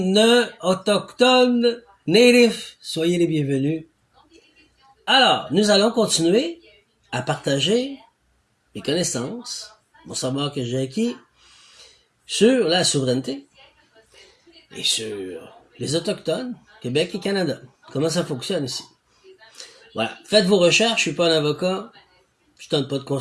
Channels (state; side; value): identical; both; correlation 1.00